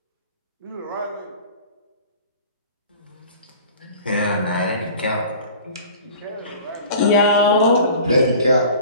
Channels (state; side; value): inverted; both; correlation -0.44